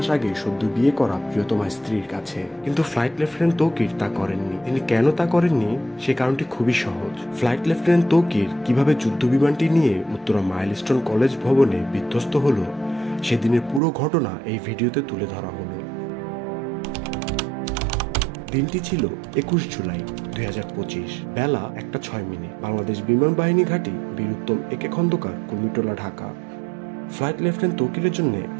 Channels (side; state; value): left; drops out; at 13.8 s